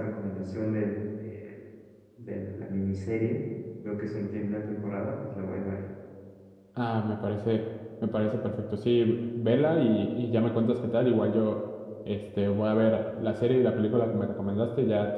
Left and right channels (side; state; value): both; identical; correlation 1.00